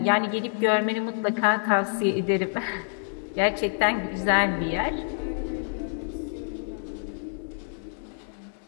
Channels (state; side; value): silent; right; digital silence